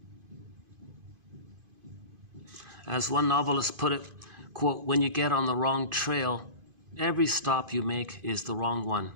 As one novelist put it, quote, when you get on the wrong trail, every stop you make is the wrong one.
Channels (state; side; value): late; left; 2.5 ms